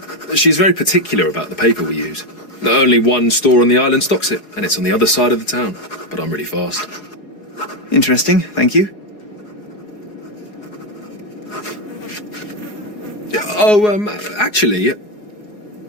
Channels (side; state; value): right; late; 4.8 ms